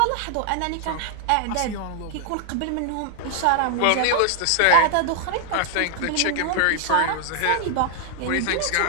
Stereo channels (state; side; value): different; both; correlation 0.00